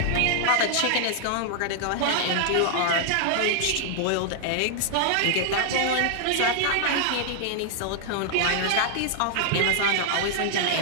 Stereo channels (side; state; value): both; different; correlation -0.01